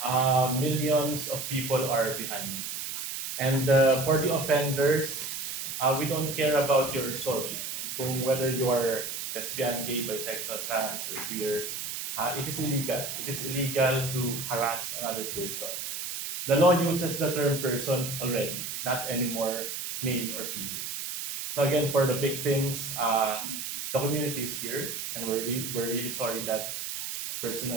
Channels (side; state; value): right; noise; hiss, 5 dB below the sound